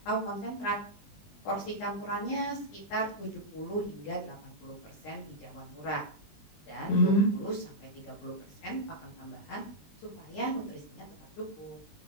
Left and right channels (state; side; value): late; right; 20 ms